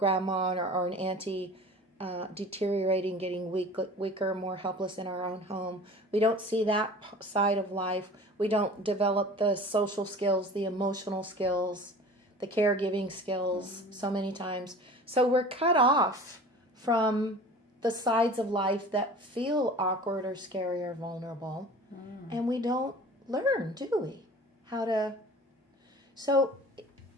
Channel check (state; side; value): normal; both; correlation 0.41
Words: or an auntie deteriorating, getting weaker, more helpless in our own home. We don't see that side of life. We don't develop the social skills, the emotional skills, the caregiving skills so many times. So we're cut off from the sides of life that feel awkward or scary or vulnerable. And we don't learn, do we? How to... So